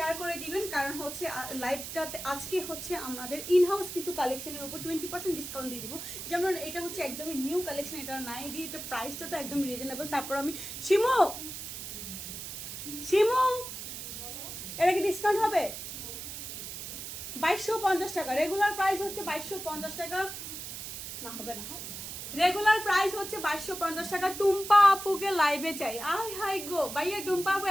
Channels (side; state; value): right; noise; hiss, 8 dB below the sound